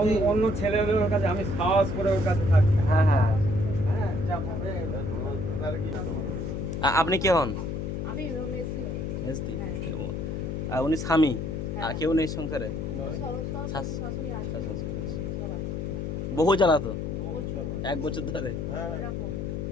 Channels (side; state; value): left; noise; hum, 3 dB below the sound